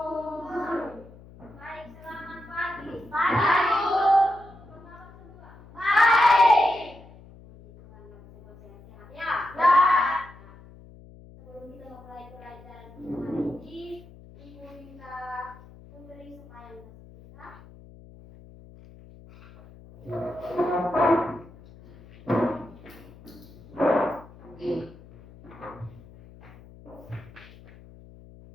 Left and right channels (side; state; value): left; noise; hum, 21 dB below the sound